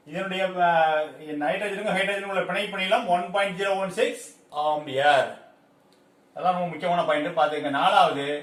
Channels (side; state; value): both; identical; correlation 1.00